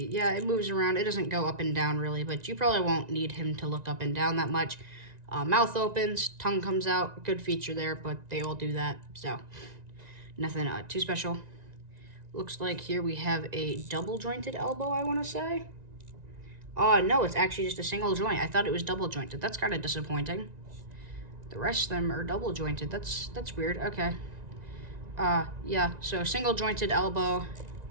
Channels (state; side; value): late; left; 1.9 ms